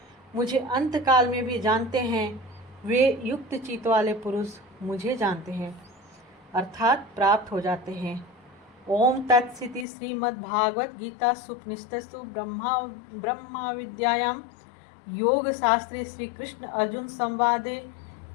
मुझे अंत काल में भी जानते हैं, वे युक्त चित्त वाले पुरुष मुझे जानते हैं अर्थात प्राप्त हो जाते हैं। ओम तत्सिति श्रीमद्भागवत गीता सुपनिषत्सु ब्रह्मा विद्यायां योग शास्त्रे श्री कृष्ण अर्जुन संवादे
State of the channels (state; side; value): drops out; right; at 9.9 s